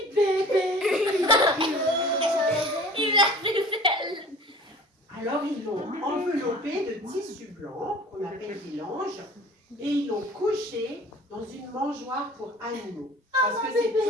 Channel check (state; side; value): normal; both; correlation 0.44